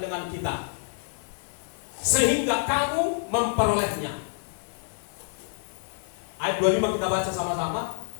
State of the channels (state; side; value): silent; right; 60 dB below the other